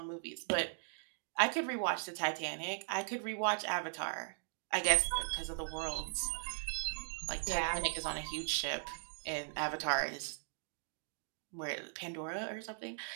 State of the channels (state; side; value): silent; left; digital silence